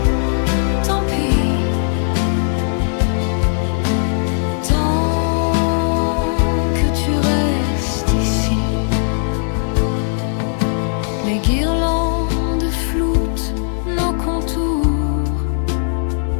Les guirlandes floutent nos contours.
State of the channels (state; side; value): silent; right; digital silence